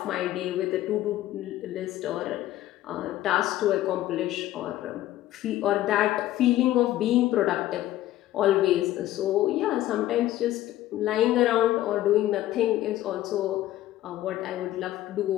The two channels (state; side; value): quieter; right; 14.3 dB